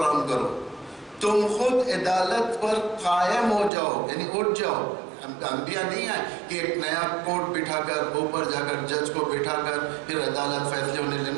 کرو، تم خود عدالت پر قائم ہو جاؤ، یعنی اٹھ جاؤ. انبیاء نہیں آئے کہ ایک نیا کوٹ بٹھا کر اوپر جا کر جج کو بٹھا کر پھر عدالت فیصلے ہونے لے.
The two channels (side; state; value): left; drops out; at 3.7 s